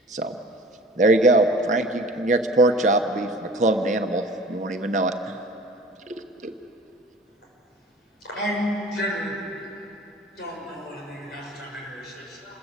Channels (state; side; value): normal; both; correlation 0.45